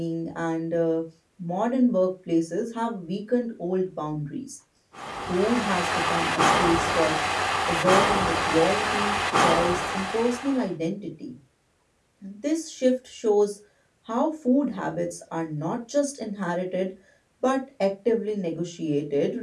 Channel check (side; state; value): both; identical; correlation 1.00